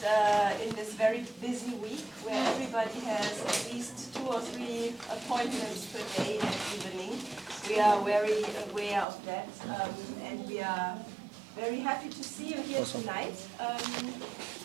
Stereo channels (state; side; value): drops out; left; at 9.1 s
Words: in this very busy week where everybody has at least 2 or 3 appointments per day and evening. We are very aware of that, and we are very happy to see you here tonight